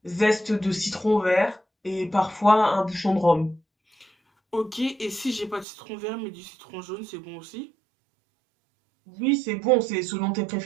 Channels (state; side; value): drops out; left; at 5.7 s